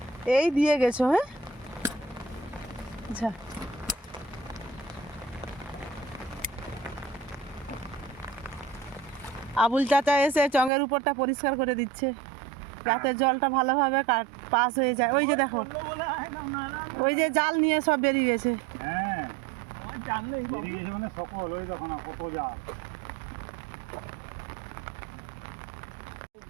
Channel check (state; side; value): drops out; left; at 10.7 s